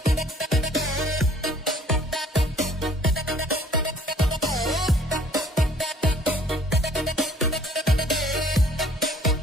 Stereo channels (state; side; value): normal; both; correlation 0.57